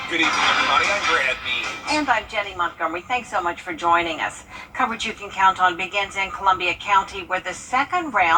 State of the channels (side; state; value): both; identical; correlation 1.00